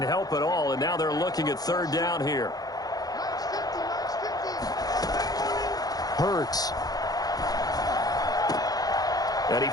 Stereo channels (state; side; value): late; right; 0.19 ms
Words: help at all, and now they're looking at 3rd down here. Hurts. And he